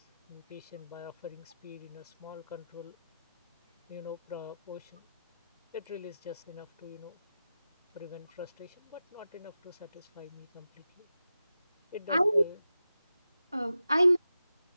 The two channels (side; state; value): both; inverted; correlation -0.92